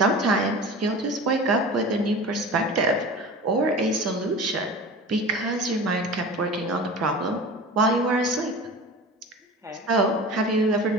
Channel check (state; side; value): normal; both; correlation 0.35